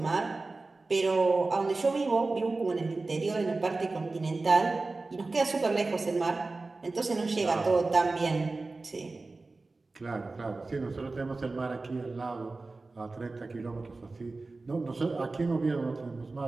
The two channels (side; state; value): left; quieter; 3.5 dB